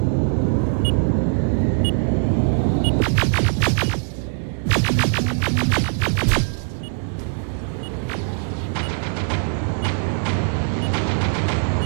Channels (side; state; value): left; silent; digital silence